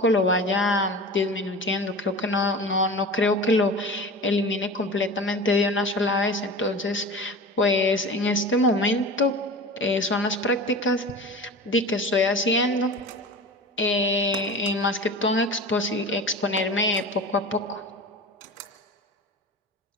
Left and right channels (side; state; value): both; normal; correlation 0.34